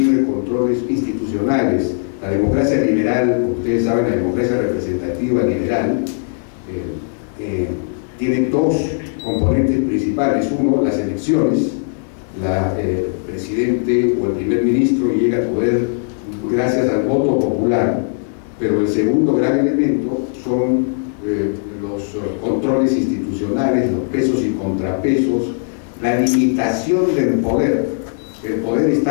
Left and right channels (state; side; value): silent; right; 60 dB below the other